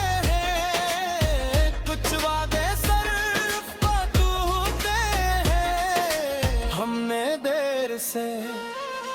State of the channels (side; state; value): both; identical; correlation 1.00